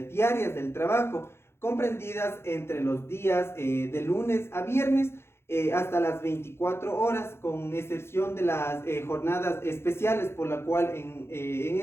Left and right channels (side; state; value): right; late; 0.12 ms